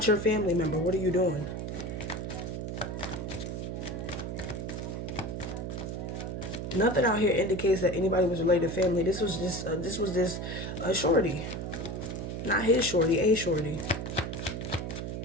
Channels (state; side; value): noise; right; hum, 5 dB below the sound